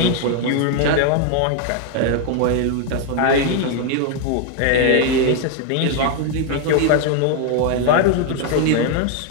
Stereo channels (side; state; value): both; different; correlation 0.00